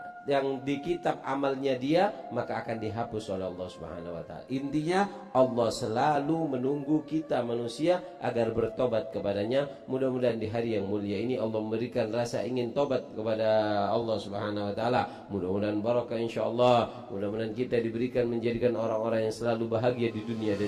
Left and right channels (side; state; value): both; identical; correlation 1.00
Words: yang di kitab amalnya dia, maka akan dihapus oleh Allah Subhanahu wa ta'ala. Intinya Allah selalu menunggu kita manusia agar bertobat kepadanya. Mudah-mudahan di hari yang mulia ini Allah memberikan rasa ingin tobat kepada Allah Subhanahu wa ta'ala. Mudah-mudahan barakah insyaallah. Mudah-mudahan kita diberikan menjadikan orang-orang yang selalu bahagia di dunia